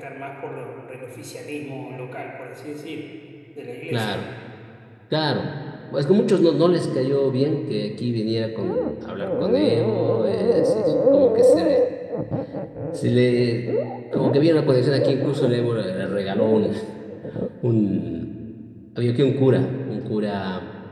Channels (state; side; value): identical; both; correlation 1.00